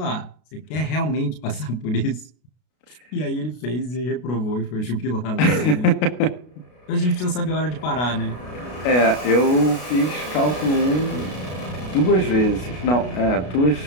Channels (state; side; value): late; right; 33 ms